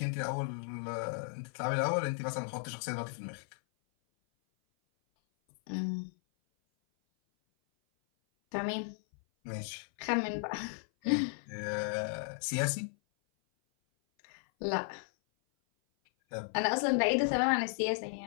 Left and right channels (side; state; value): right; silent; 55 dB below the other